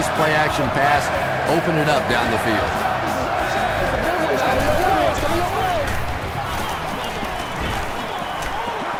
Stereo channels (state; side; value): identical; both; correlation 1.00